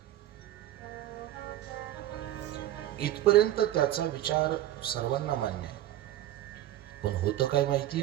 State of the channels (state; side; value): quieter; left; 13.3 dB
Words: इथपर्यंत त्याचा विचार सर्वांना मान्य आहे. पण होतं काय